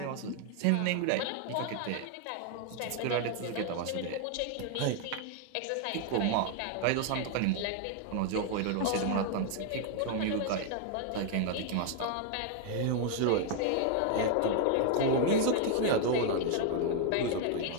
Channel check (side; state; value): both; different; correlation 0.00